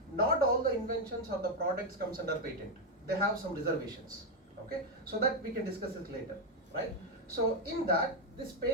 not all the inventions or the products comes under patent. They have some reservations. Okay, so that we can discuss it later, right? So in that, this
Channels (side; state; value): both; normal; correlation 0.04